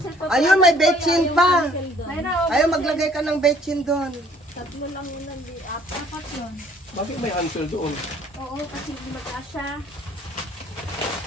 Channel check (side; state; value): both; normal; correlation 0.58